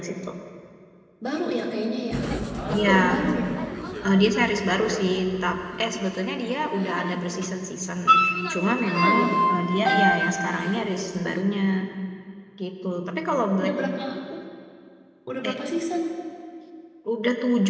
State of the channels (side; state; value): both; identical; correlation 1.00